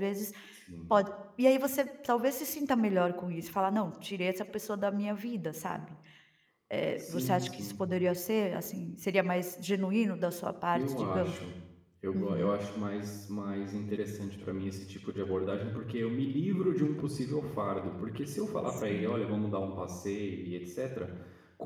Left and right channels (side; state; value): both; identical; correlation 1.00